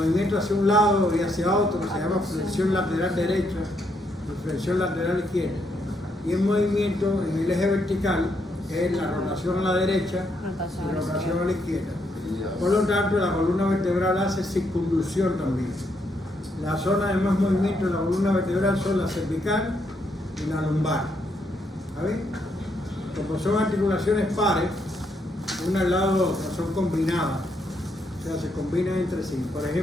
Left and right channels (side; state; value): both; normal; correlation 0.76